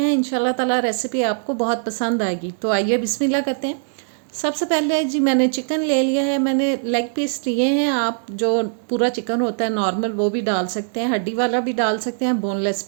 इंशाल्लाह ताला रेसिपी आपको बहुत पसंद आएगी। तो आइए बिस्मिल्लाह करते हैं। सबसे पहले जी मैंने चिकन ले लिया है, मैंने लेग पीस लिए हैं। आप जो पूरा चिकन होता है नॉर्मल वो भी डाल सकते हैं, हड्डी वाला भी डाल सकते हैं, बोनलेस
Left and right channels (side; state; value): left; silent; digital silence